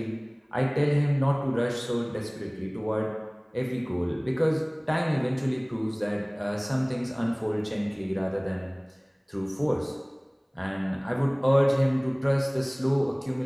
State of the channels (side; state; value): both; identical; correlation 1.00